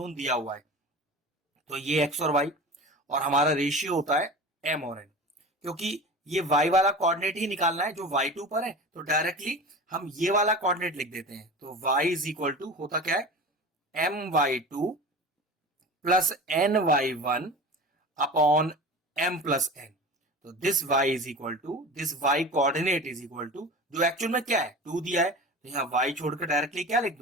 दिया हुआ है, तो ये x और y, और हमारा रेशियो होता है m और n। क्योंकि ये y वाला कोऑर्डिनेट ही निकालना है जो y2 पर है, तो डायरेक्टली हम ये वाला कोऑर्डिनेट लिख देते हैं। तो y इज इक्वल टू होता क्या है, my2 plus ny1 upon m plus n। तो this y is equal to, this y coordinate is equal to, जो एक्चुअल में क्या है 2 दिया है, तो यहाँ y छोड़कर डायरेक्टली क्या लिख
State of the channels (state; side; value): normal; both; correlation 0.34